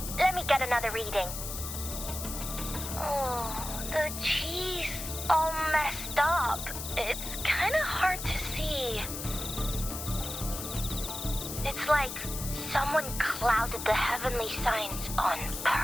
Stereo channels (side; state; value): left; noise; hiss, 7 dB below the sound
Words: let me get another reading. Oh, the cheese all messed up. It's kind of hard to see. It's like someone clouded the heavenly signs on